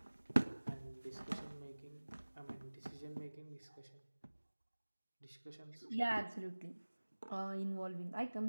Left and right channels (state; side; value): inverted; both; correlation -1.00